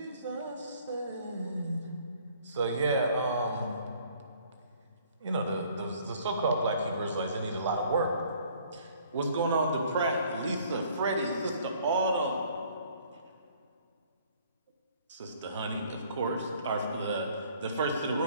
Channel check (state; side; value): inverted; both; correlation -0.58